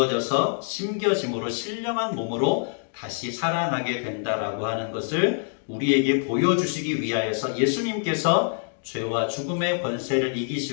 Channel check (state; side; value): silent; right; digital silence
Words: 심겨짐으로 신령한 몸으로 다시 살아나게 된다라고 하는 것을 우리에게 보여주시기 위하여서 예수님께서 죄와 죽음의 권세를